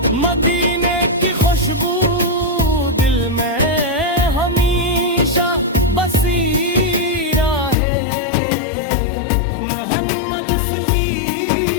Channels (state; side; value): drops out; right; at 7.8 s